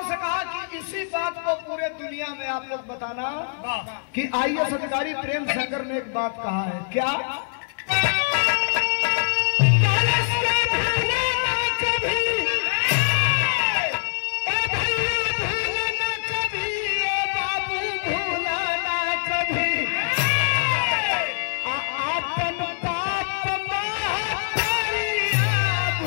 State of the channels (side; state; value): right; silent; digital silence